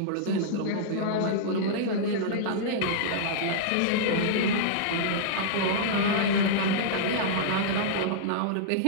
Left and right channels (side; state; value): both; different; correlation -0.02